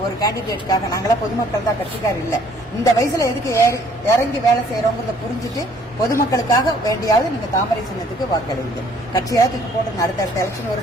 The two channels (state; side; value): normal; both; correlation 0.60